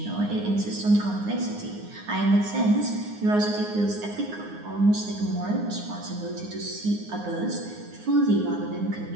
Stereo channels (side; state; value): left; late; 9.7 ms